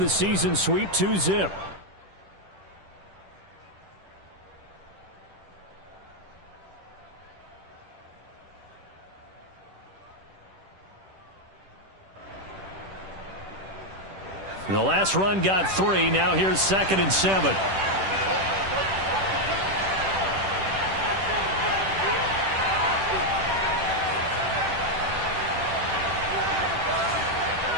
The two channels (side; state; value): left; late; 10 ms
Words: season sweep 2-zip. The last run got 3. Now here's 2nd and 7.